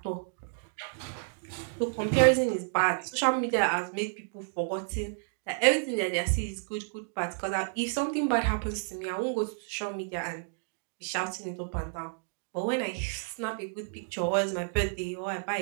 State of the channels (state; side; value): silent; left; digital silence